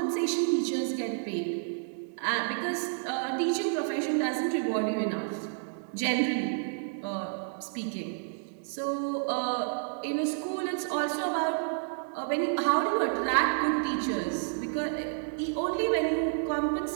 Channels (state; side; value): silent; left; digital silence